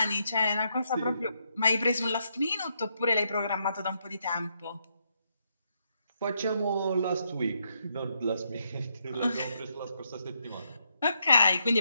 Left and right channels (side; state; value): both; inverted; correlation -0.78